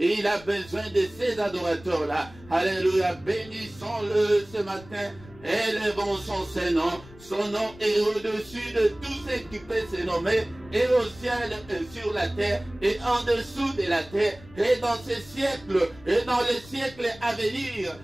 il a besoin de ces adorateurs-là. Alléluia. Bénissons-le ce matin. Élevons son nom. Son nom est au-dessus de tout ce qui peut se nommer et au ciel et sur la terre, et en dessous de la terre, et dans ces siècles, et dans les siècles à venir,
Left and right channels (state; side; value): noise; left; rumble, 21 dB below the sound